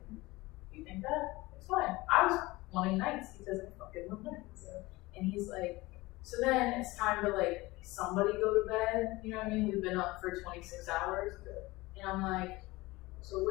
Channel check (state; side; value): quieter; right; 20.9 dB